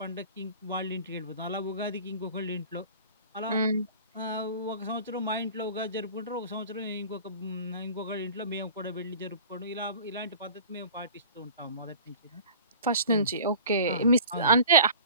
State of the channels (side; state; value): both; inverted; correlation -0.42